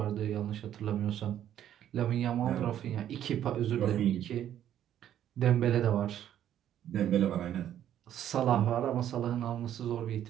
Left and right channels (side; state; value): left; quieter; 10.9 dB